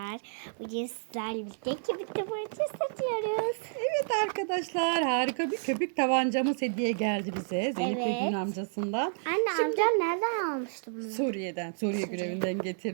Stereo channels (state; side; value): silent; left; 58 dB below the other